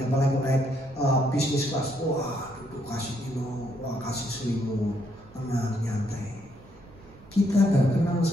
apalagi naik bisnis kelas, wah duduk kasih minum, wah kasih selimut, tenang, nyantai. Kita nggak kenal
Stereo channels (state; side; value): noise; right; rumble, 24 dB below the sound